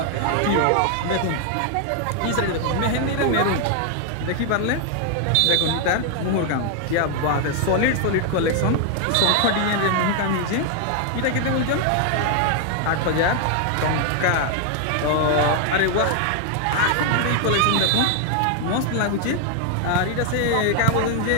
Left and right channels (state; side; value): different; both; correlation 0.00